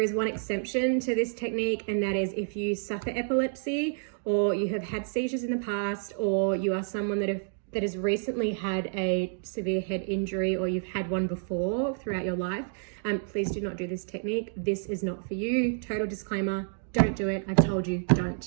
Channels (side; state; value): left; silent; digital silence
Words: is one exception to this technique, and that is if you suffer epilepsy, or you have had seizures in the past, or you are someone that has recently had a severe head injury, or you've had one before throughout your life. Please do not do this technique. This is not for you. Total disclaimer, don't do it. I've told you,